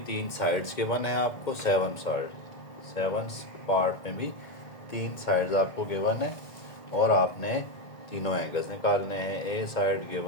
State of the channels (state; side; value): late; right; 2.1 ms